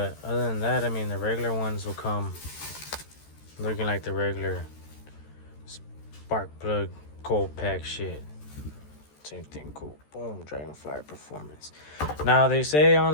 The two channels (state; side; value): late; right; 13 ms